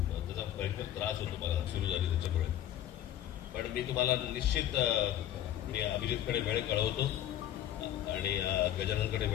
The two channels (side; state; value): right; quieter; 12.0 dB